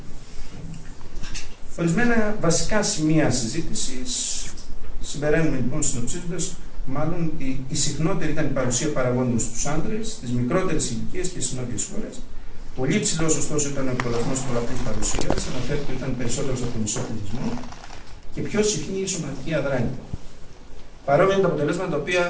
Ορισμένα βασικά σημεία συζήτησης. Συμπεραίνουμε λοιπόν συνοψίζοντας, μάλλον ότι η συχνότερη ήταν η παρουσία παραγόντων στους άντρες, στις μικρότερες ηλικίες και στις νότιες χώρες. Πολύ υψηλός ωστόσο ήταν ο εκπολασμός της πολλαπλής παρουσίας, αναφέρεται ότι ήταν περισσότερος από τον μισό πληθυσμό, και πιο συχνή η σωματική αδράνεια. Παρόμοια είναι τα αποτελέσματα τα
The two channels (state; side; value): identical; both; correlation 1.00